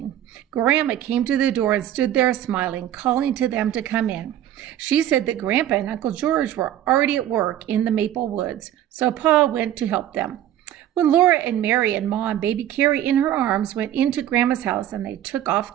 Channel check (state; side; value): quieter; left; 11.9 dB